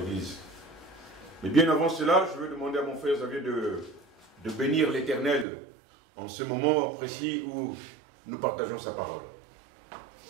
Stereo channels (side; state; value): left; drops out; at 5.5 s